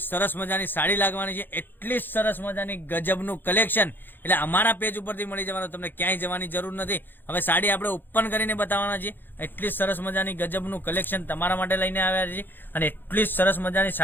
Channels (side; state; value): right; late; 0.096 ms